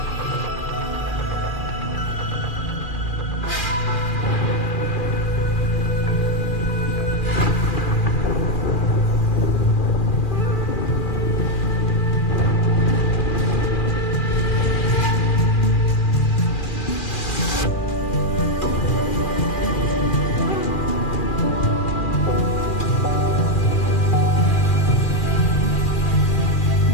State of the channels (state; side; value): late; right; 2.4 ms